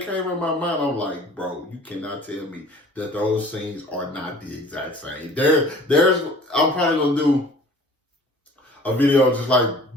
came in my mind. I'm like, bro, you cannot tell me that those scenes are not the exact same. I'm probably gonna do a video just like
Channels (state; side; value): normal; both; correlation 0.48